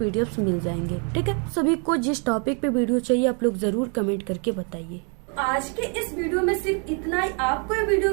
मिल जाएंगे। ठीक है, सभी को जिस टॉपिक पे वीडियो चाहिए आप लोग जरूर कमेंट करके बताइए। आज के इस वीडियो में सिर्फ इतना ही। आपको ये वीडियो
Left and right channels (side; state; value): left; quieter; 38.4 dB